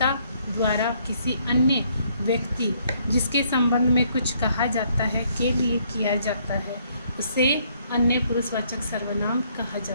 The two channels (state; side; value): inverted; both; correlation -0.68